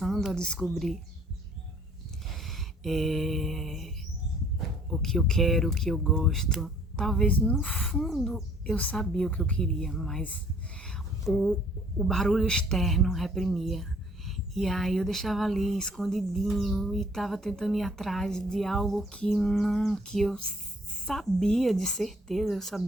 a descobrir o que eu quero, o que eu gosto. Talvez no fundo eu sabia o que eu queria, mas o barulho externo reprimia. E aí eu deixava ali escondidinho e tava tentando ir atrás de algo que eu sabia de certeza, eu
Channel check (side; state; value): both; normal; correlation 0.58